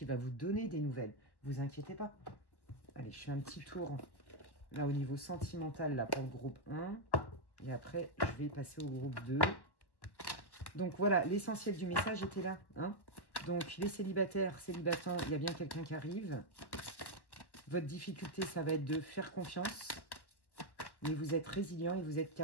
va vous donner des nouvelles. Vous inquiétez pas. Allez, je fais un petit tour. Là, au niveau sentimental, là, pour le groupe 1. Et après, je vais passer au groupe 2. Donc, voilà, l'essentiel du message était là. Hein. Donc, les célibataires, célibatants, il y a bien quelqu'un qui arrive. Votre difficulté, ça va être de faire confiance. Mais vous êtes résilient et vous êtes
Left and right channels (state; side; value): late; right; 1.1 ms